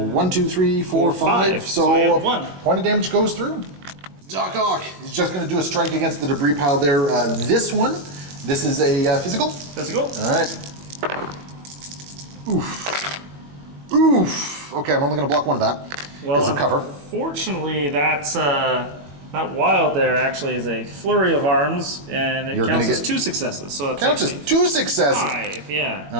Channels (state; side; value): late; left; 21 ms